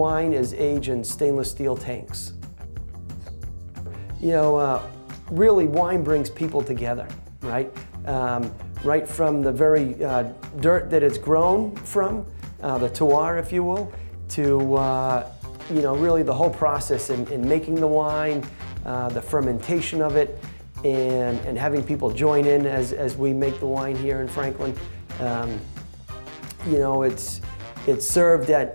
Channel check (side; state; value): both; inverted; correlation -1.00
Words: is aged in stainless steel tanks. Really wine brings people together, right? Right from the very dirt that it's grown from, the terroir, if you will, to really the whole process in making the wine, the fermentation of it, and having people join in as we make the wine here in Franklin. It's served